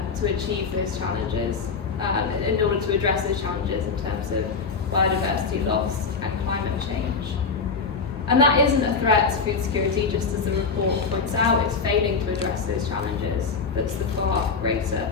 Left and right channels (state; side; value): quieter; right; 4.9 dB